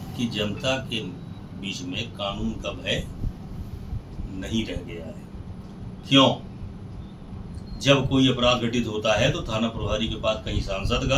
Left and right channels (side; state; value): both; identical; correlation 1.00